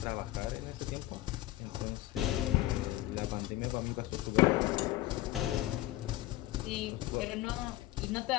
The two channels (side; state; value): right; quieter; 16.5 dB